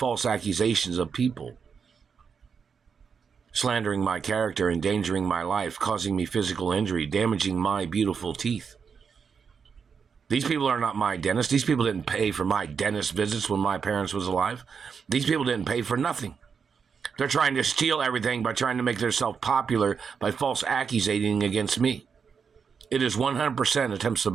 accusations of people slandering my character, endangering my life, causing me physical injury, damaging my beautiful teeth. These people are not my dentist. These people didn't pay for my dentist visits when my parents was alive. These people didn't pay for nothing. They're trying to steal everything by trying to make themselves popular by false accusating against me. It is 100% attempts of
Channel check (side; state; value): left; quieter; 6.2 dB